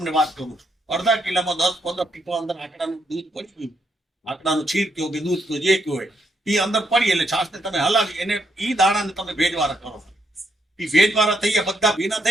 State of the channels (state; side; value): normal; both; correlation 0.76